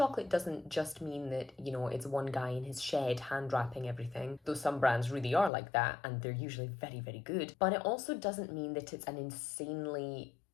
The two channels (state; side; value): drops out; right; at 5.5 s